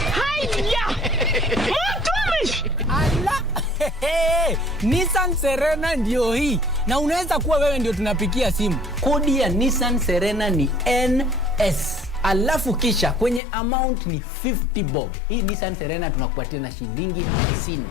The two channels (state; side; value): drops out; right; at 13.4 s